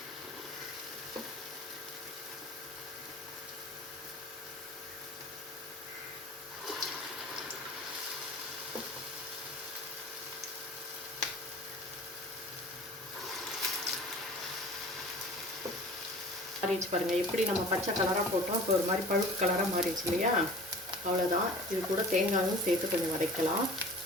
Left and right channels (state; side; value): normal; both; correlation 0.42